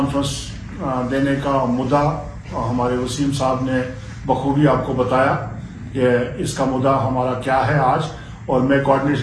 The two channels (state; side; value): identical; both; correlation 1.00